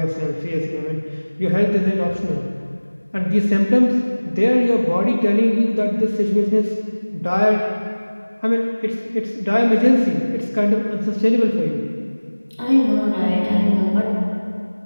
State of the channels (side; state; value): both; inverted; correlation -1.00